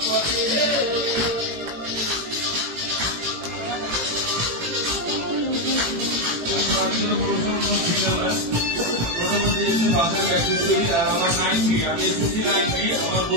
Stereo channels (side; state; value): left; late; 18 ms